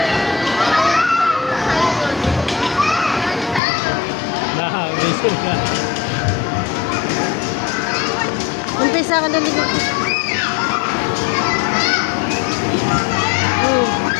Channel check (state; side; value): drops out; right; at 3.6 s